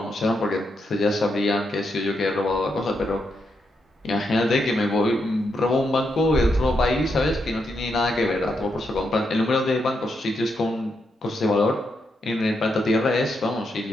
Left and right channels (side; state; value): both; normal; correlation 0.82